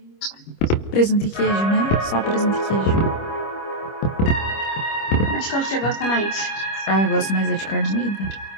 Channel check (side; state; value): right; late; 25 ms